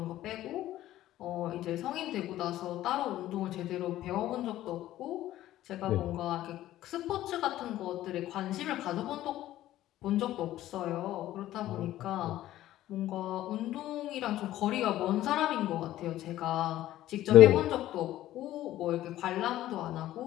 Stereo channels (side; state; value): right; quieter; 14.1 dB